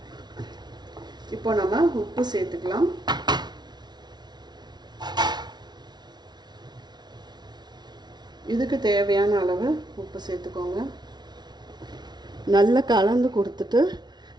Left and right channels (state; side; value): late; left; 0.20 ms